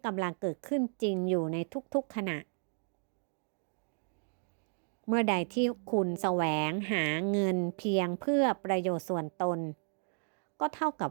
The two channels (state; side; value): silent; left; 55 dB below the other